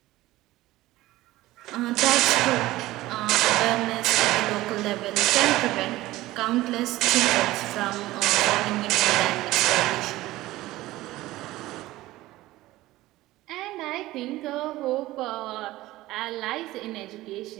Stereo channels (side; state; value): left; quieter; 17.2 dB